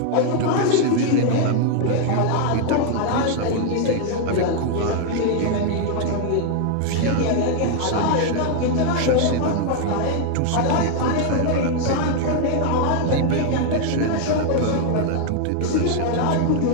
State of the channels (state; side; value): different; both; correlation 0.00